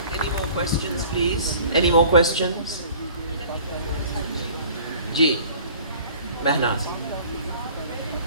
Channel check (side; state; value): both; inverted; correlation -0.48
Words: Any more questions, please? Any more questions? Ji, Mehnaz.